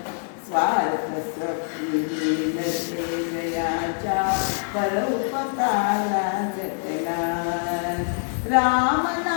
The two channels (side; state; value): right; silent; 62 dB below the other